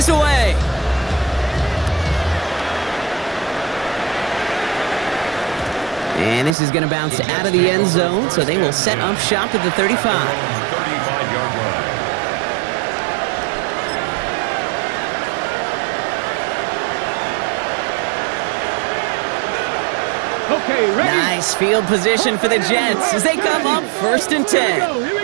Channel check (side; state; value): left; drops out; at 6.6 s